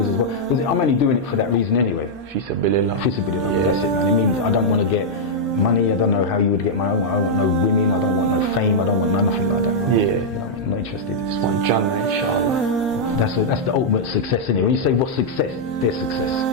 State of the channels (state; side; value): normal; both; correlation -0.06